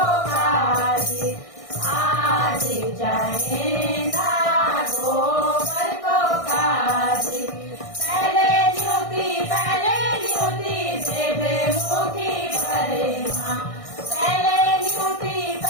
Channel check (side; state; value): right; late; 1.6 ms